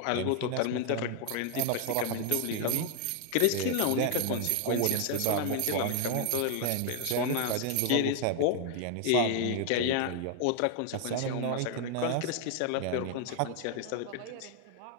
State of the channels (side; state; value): both; different; correlation 0.00